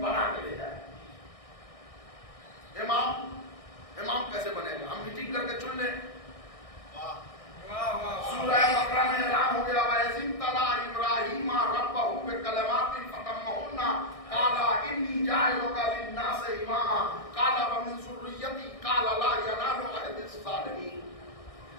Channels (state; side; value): late; right; 1.6 ms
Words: بنا کے بھیجا ہے. امام کیسے بنے گا؟ ہم میٹنگ کر کے چن لیں. سورہ بقرہ میں اعلان ہو گیا وَإِذِ ابْتَلَىٰ إِبْرَاهِيمَ رَبَّهُ بِكَلِمَاتٍ فَأَتَمَّهُنَّ قَالَ إِنِّي جَاعِلُكَ لِلنَّاسِ إِمَامًا قَالَ وَمِن ذُرِّيَّتِي قَالَ لَا يَنَالُ عَهْدِي الظَّالِمِينَ.